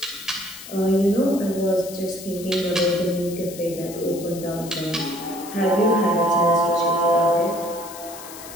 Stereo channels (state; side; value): noise; left; hiss, 14 dB below the sound